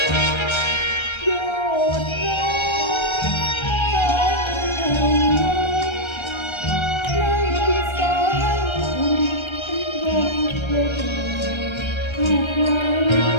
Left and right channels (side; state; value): right; late; 1.3 ms